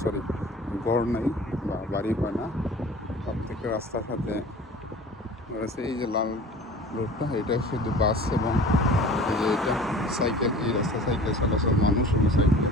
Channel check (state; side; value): normal; both; correlation 0.43